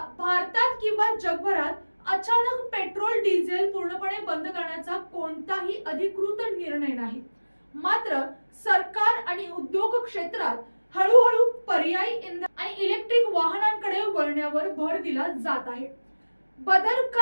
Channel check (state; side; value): inverted; both; correlation -1.00